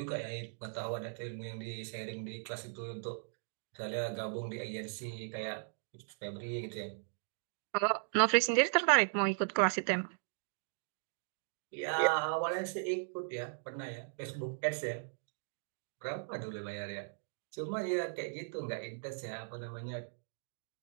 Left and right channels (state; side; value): silent; left; digital silence